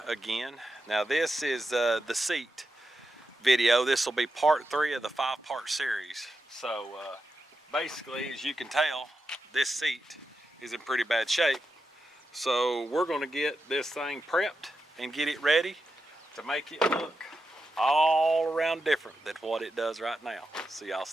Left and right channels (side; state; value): both; normal; correlation 0.88